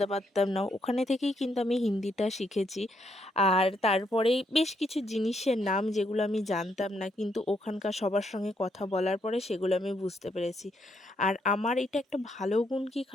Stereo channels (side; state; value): both; normal; correlation 0.76